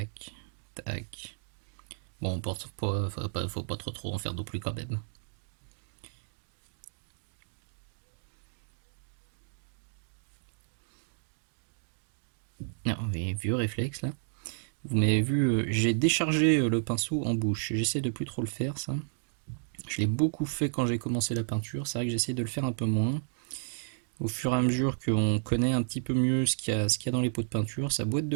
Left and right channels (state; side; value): silent; left; digital silence